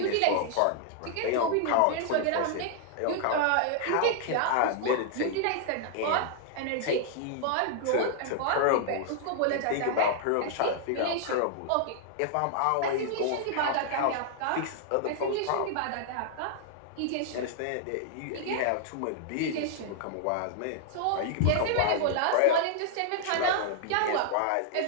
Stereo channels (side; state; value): both; different; correlation -0.01